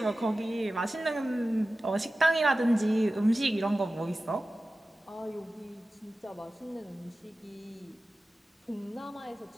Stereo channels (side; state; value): both; normal; correlation 0.95